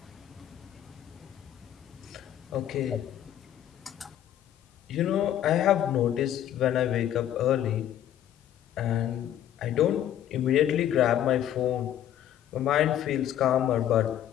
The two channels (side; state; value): right; quieter; 11.1 dB